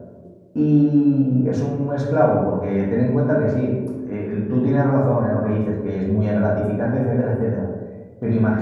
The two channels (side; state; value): both; identical; correlation 1.00